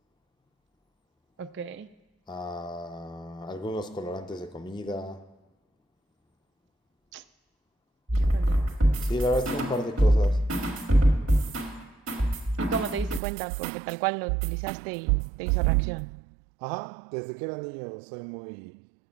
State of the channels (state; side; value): drops out; left; at 13.2 s